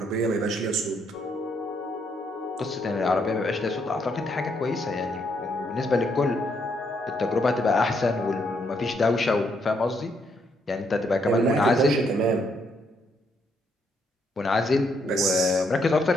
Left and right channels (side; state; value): both; normal; correlation 0.74